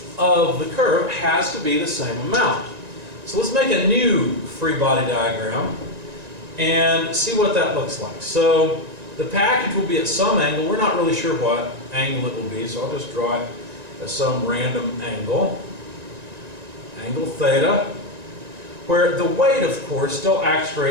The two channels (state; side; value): late; left; 1.9 ms